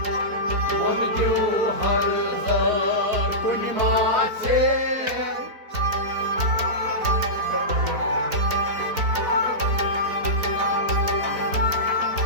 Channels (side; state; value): left; late; 4.2 ms